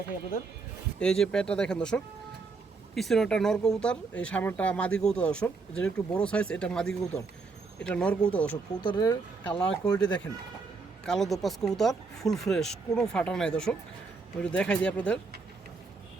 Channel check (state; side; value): quieter; left; 4.3 dB